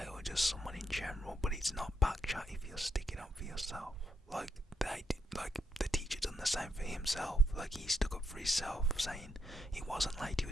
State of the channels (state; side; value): normal; both; correlation 0.79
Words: or just someone in general, but it's not backchat if you're sticking up for yourself. Like the teacher done the same for himself. Like, he stuck up for himself, saying he wasn't late, he